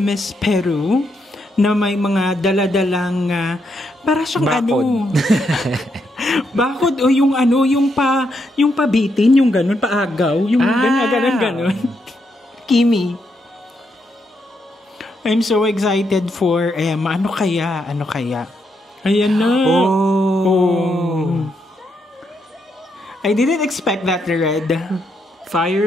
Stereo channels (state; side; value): normal; both; correlation 0.79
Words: Peru na may mga daladalang para siyang bakod. Bakod o yung pabitin, yung ganun, paagaw, yung ganun. Kimi. I'm so excited for Emma. Ano kaya? Ayan na. Oh. I didn't expect that red.